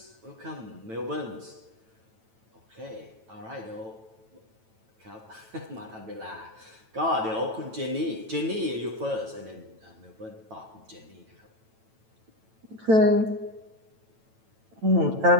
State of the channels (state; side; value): late; left; 9.1 ms